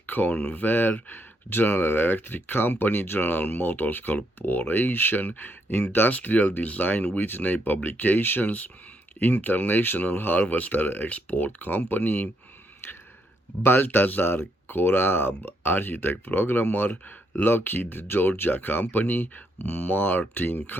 Convair, General Electric Company, General Motors Corporation, Industrial Design Whitney Publications, International Harvester Export Company, Baltazar Korab, architect programmer, Lockheed Georgia Company, Martin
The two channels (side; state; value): both; normal; correlation 0.76